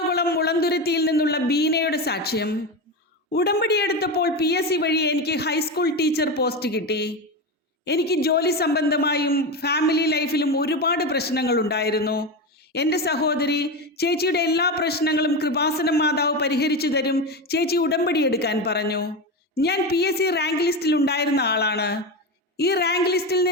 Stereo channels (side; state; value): both; normal; correlation 0.18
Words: മുളന്തുരുത്തിയിൽ നിന്നുള്ള ബീനയുടെ സാക്ഷ്യം. ഉടമ്പടി എടുത്തപ്പോൾ PSC വഴി എനിക്ക് ഹൈസ്കൂൾ ടീച്ചർ പോസ്റ്റ് കിട്ടി. എനിക്ക് ജോലി സംബന്ധമായും ഫാമിലി ലൈഫിലും ഒരുപാട് പ്രശ്നങ്ങളുണ്ടായിരുന്നു. എൻ്റെ സഹോദരി ചേച്ചിയുടെ എല്ലാ പ്രശ്നങ്ങളും കൃപാസനം മാതാവ് പരിഹരിച്ചു തരും, ചേച്ചി ഉടമ്പടി എടുക്കാൻ പറഞ്ഞു. ഞാൻ PSC റാങ്ക് ലിസ്റ്റിൽ ഉണ്ടായിരുന്ന ആളാണ്. ഈ റാങ്ക് ലിസ്റ്റിൽ